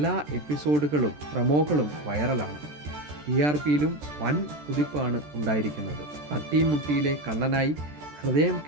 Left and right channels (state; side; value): late; left; 13 ms